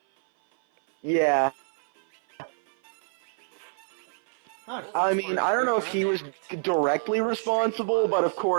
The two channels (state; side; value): silent; left; 56 dB below the other